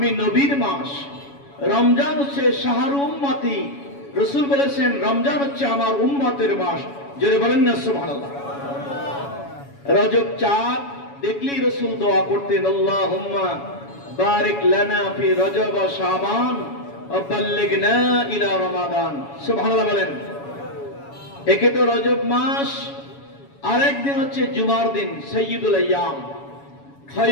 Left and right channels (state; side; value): late; right; 7.1 ms